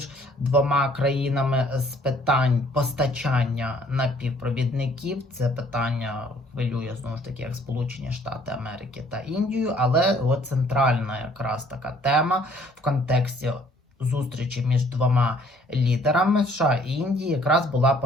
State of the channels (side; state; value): both; normal; correlation 0.60